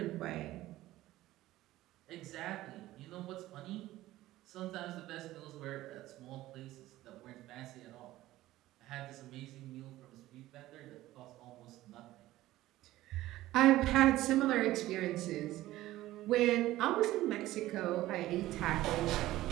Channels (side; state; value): left; quieter; 16.0 dB